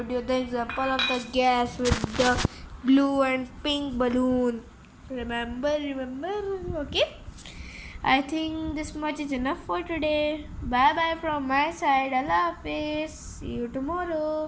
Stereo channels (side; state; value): both; identical; correlation 1.00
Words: you the example of the gas with the blue and pink balloon. Remember? Okay, I think this much is enough for today. Bye bye from my side. Allah Hafiz. See you